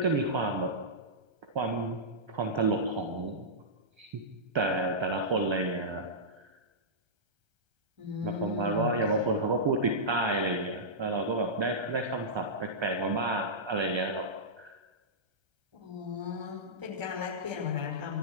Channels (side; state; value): left; late; 1.3 ms